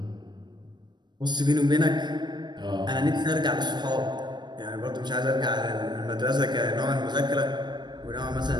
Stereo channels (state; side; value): late; left; 0.21 ms